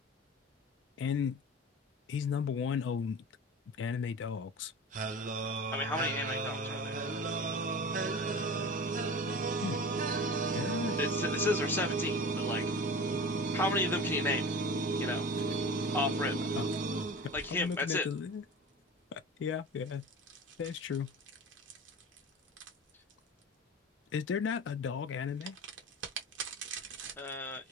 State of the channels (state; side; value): normal; both; correlation 0.34